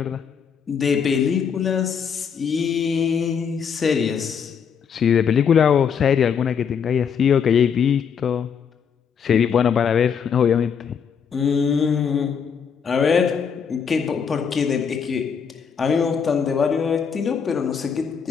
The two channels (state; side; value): quieter; right; 6.9 dB